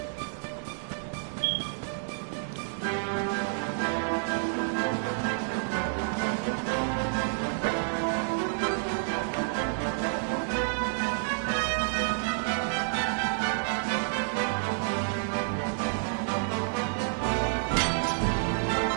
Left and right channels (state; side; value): silent; left; digital silence